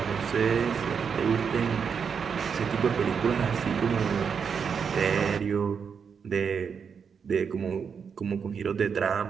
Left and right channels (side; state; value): left; quieter; 6.5 dB